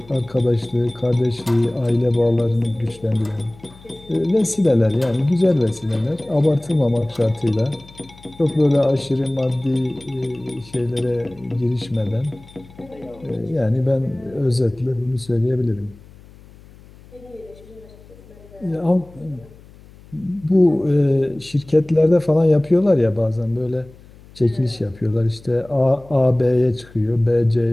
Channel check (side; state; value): left; noise; hum, 23 dB below the sound